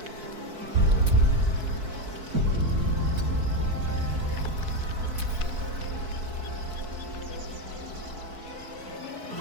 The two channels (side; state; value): left; late; 4.6 ms